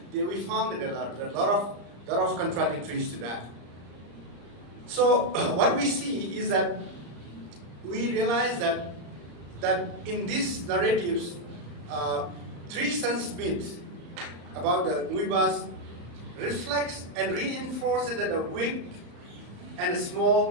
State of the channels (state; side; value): late; left; 34 ms